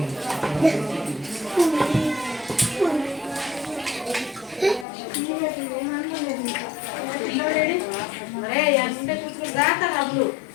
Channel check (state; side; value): drops out; right; at 4.9 s